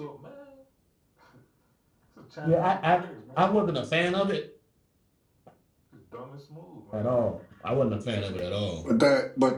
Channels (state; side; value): identical; both; correlation 1.00